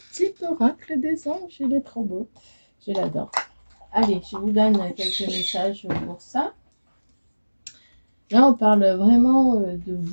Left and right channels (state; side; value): inverted; both; correlation -1.00